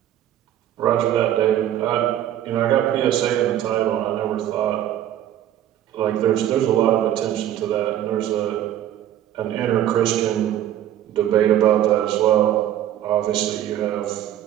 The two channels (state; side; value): quieter; left; 11.7 dB